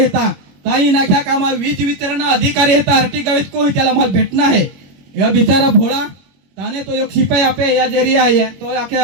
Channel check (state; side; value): late; left; 21 ms